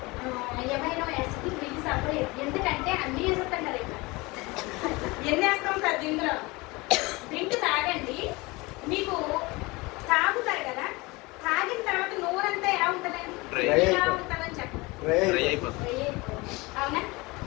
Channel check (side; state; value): right; quieter; 23.7 dB